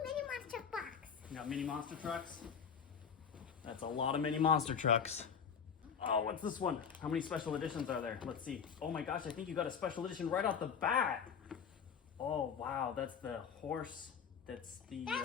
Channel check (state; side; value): quieter; right; 7.0 dB